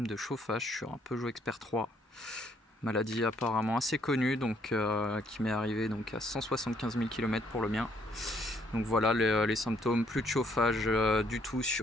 de chauffage sur un Peugeot Expert 3. Maladie apparemment assez connue, donc qui m'est arrivée donc à 175 000 km pour le mien. Donc voilà les symptômes, plus de chauffage du tout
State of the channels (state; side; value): normal; both; correlation 0.68